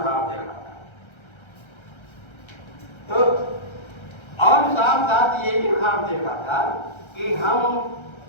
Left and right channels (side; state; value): right; late; 1.3 ms